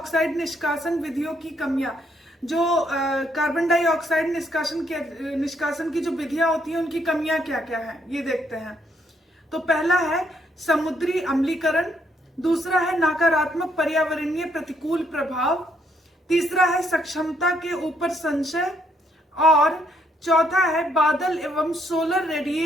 निष्कासन विधियों की कमियां। जो कार्बन डाइऑक्साइड निष्कासन की जो विधियां होती हैं उनकी कमियां क्या क्या हैं, ये देखते हैं। तो पहला है समुद्री अम्लीकरण, दूसरा है नकारात्मक पर्यावरणीय प्रतिकूल प्रभाव, तीसरा है सक्षमता के ऊपर संशय और चौथा है बादल एवं सोलर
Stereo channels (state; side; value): normal; both; correlation 0.72